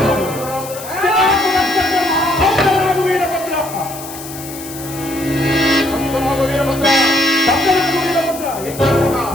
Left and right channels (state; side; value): noise; left; hiss, 13 dB below the sound